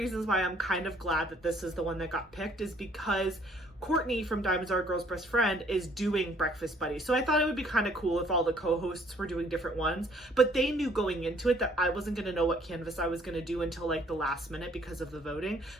why I'm kind of glad that this is the one that got picked is because Courtney from Diamonds Are a Girl's Best Friend is doing Breakfast Buddies. So I thought it would be kind of cool if all the co-hosts were doing different ones, but they knew going into it that I wasn't going to know what canvas I was going to do until like the last minute because of the voting.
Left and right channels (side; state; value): both; normal; correlation 0.61